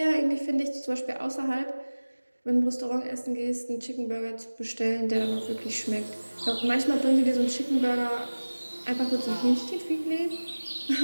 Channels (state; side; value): inverted; both; correlation -1.00